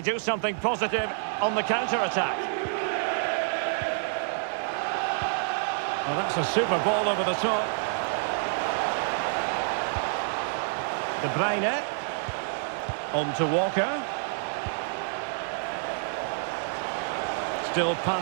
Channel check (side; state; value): left; silent; digital silence